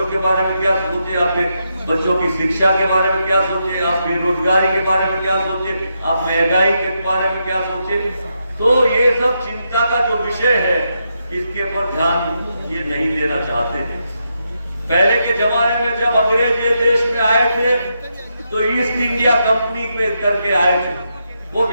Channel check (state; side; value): inverted; both; correlation -0.83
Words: के बारे में क्या सोचे, आपके बच्चों की शिक्षा के बारे में क्या सोचे, आप बेरोजगारी के बारे में क्या सोचे, आप महंगाई के बारे में क्या सोचे। तो ये सब चिंता का जो विषय है, इसके पर ध्यान ये नहीं देना चाहते थे। पहले के जमाने में जब अंग्रेज ये देश में आए थे, तो ईस्ट इंडिया कंपनी में करके आए थे, वो